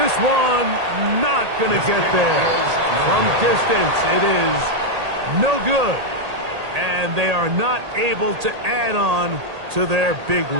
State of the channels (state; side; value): late; left; 1.8 ms